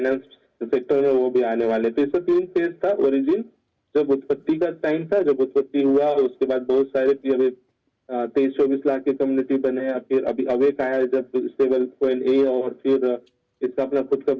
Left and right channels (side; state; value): both; identical; correlation 1.00